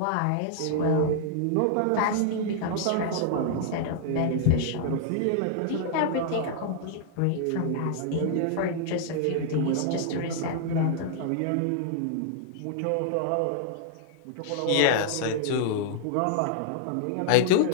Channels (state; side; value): different; both; correlation -0.01